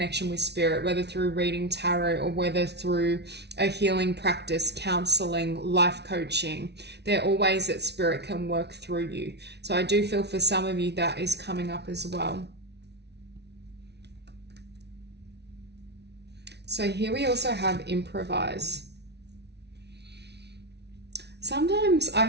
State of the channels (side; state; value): left; late; 0.49 ms